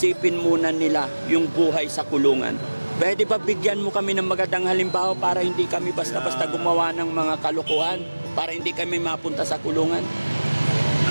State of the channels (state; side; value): inverted; both; correlation -1.00